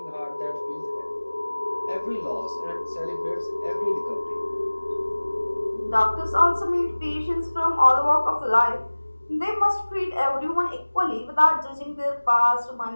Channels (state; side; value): inverted; both; correlation -1.00